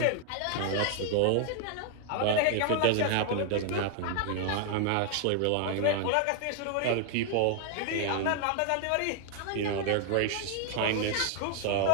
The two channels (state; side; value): different; both; correlation 0.00